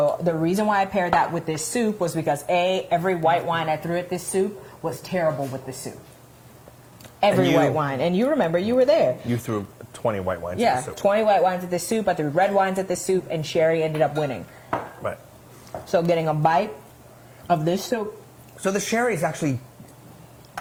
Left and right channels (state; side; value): identical; both; correlation 1.00